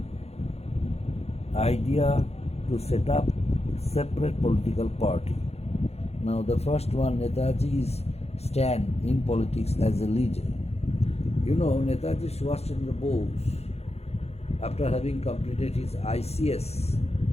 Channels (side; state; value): right; late; 0.30 ms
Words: idea to set up separate political party. Now the first one, Netaji's stand in politics as a leader. You know, Netaji Subhash Chandra Bose, after having completed his ICS,